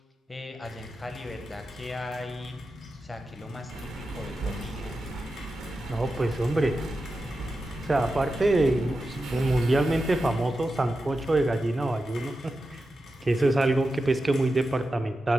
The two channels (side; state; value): both; normal; correlation 0.91